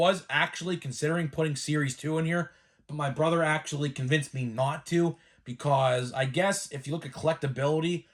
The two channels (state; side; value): identical; both; correlation 1.00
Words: actually considering putting Series 2 in here, but my brother actually convinced me not to because I guess if you look at collectability,